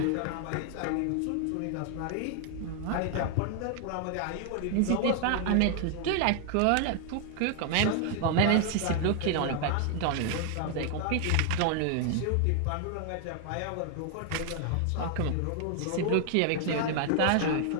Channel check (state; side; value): different; both; correlation 0.00